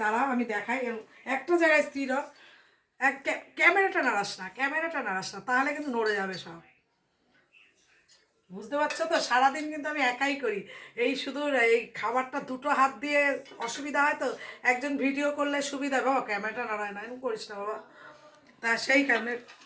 দাঁড়াও আমি দেখাই। একটা জায়গায় স্থির হ। ক্যামেরাটা নাড়াস না, ক্যামেরাটা নাড়াস না, তাহলে কিন্তু নড়ে যাবে সব। বুঝতে পারছো তো, সারাদিন কিন্তু আমি একাই করি। এই শুধু এই খাবারটা দুটো হাত দিয়ে অসুবিধা হয় তো, একজন ভিডিও করলে সুবিধা। বাবা ক্যামেরাটা নাড়ায় না, এরকম করিস না বাবা। তা সেই কারণে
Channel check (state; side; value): identical; both; correlation 1.00